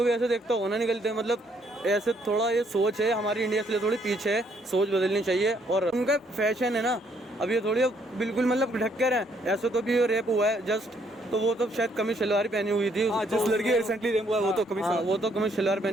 भी ऐसे देखता होगा ना, निकलते। मतलब ऐसे थोड़ा ये सोच है हमारी इंडिया से थोड़ी पीछे है, सोच बदलनी चाहिए। और उनका फैशन है ना, अब ये थोड़ी बिल्कुल मतलब ढक कर है। ऐसे तो भी रेप हुआ है जस्ट, तो वो तो शायद कमीज शलवार पहनी हुई थी। जिस लड़की रिसेंटली रेप हुआ है वो तो कमीज शलवार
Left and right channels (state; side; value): normal; both; correlation 0.69